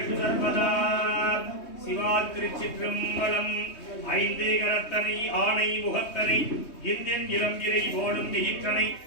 सर्वदा சிவாத்திருச்சிற்றம்பலம் ஐந்தே கரத்தனை ஆணை முகத்தனை இந்தியன் இளம்பிரை ஓடும் விகிற்றனை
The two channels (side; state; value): right; late; 3.2 ms